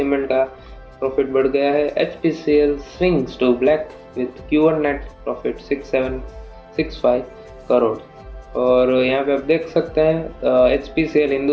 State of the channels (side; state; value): both; identical; correlation 1.00